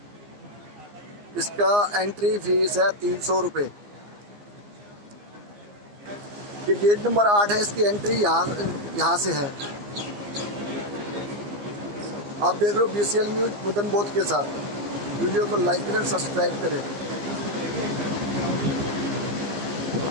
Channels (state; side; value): late; left; 15 ms